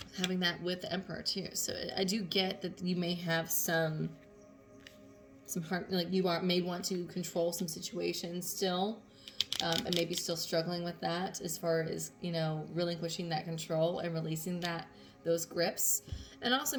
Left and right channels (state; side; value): identical; both; correlation 1.00